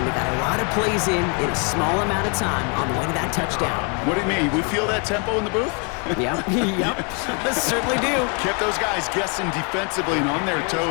They got a lot of plays in a small amount of time on the way to that touchdown. What do you mean? We feel that tempo in the booth? Yep, yep, certainly do. Kept those guys guessing defensively and on their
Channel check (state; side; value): quieter; right; 35.7 dB